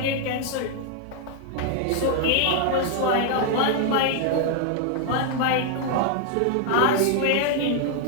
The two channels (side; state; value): both; different; correlation 0.00